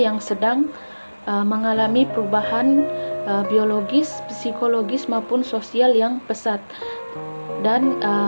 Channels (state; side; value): inverted; both; correlation -1.00